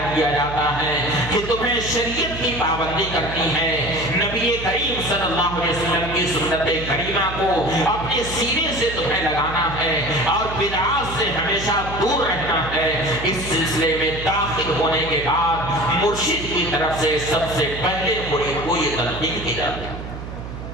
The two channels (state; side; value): noise; right; hum, 9 dB below the sound